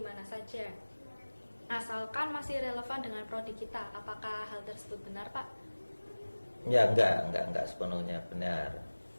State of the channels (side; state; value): both; inverted; correlation -1.00